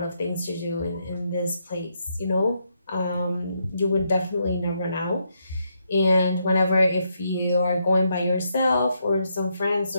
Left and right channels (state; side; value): inverted; both; correlation -0.79